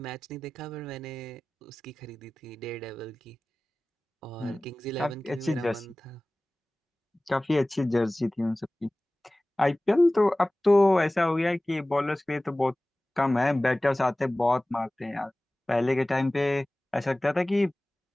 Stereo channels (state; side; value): normal; both; correlation 0.98